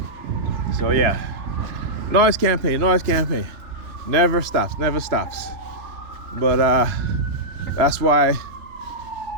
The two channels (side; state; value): left; late; 3.4 ms